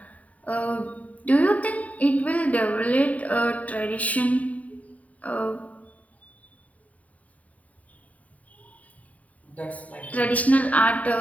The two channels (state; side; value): late; right; 0.070 ms